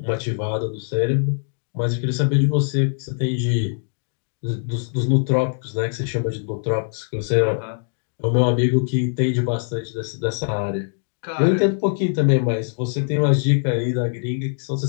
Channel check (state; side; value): silent; right; digital silence